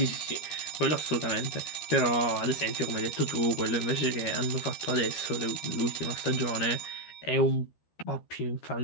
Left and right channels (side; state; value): right; late; 13 ms